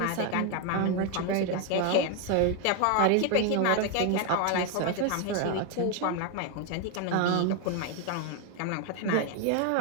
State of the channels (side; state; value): both; different; correlation 0.01